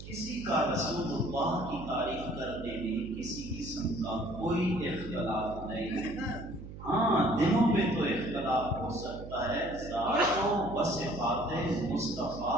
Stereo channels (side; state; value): right; noise; hum, 12 dB below the sound